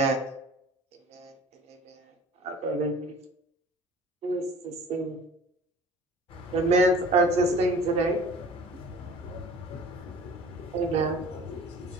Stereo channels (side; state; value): both; normal; correlation 0.46